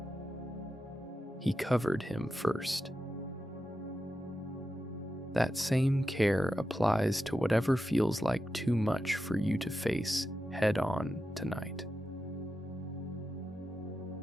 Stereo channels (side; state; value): both; normal; correlation 0.90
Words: He covered him first. That same care applies to whatever feels like too much for you to face head on tonight.